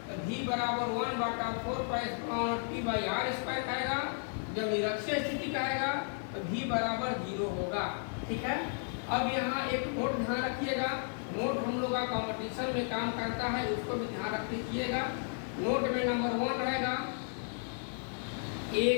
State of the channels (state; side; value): silent; right; 55 dB below the other